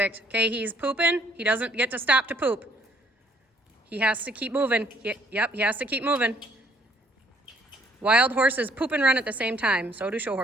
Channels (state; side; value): normal; both; correlation 0.64